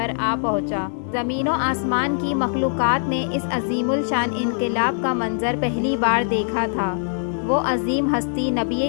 آ پہنچا۔ زمین و آسمان کی مخلوقات نے اس عظیم الشان انقلاب کا منظر پہلی بار دیکھا تھا۔ وہ عظیم ہستی نبی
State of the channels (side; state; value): right; silent; digital silence